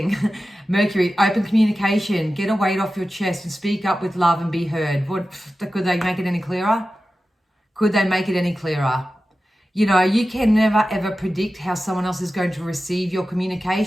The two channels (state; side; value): normal; both; correlation 0.94